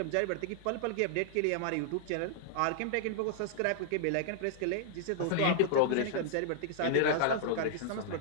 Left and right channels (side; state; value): both; different; correlation -0.01